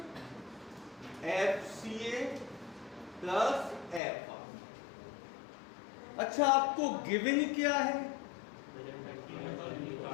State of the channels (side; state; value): right; drops out; at 4.0 s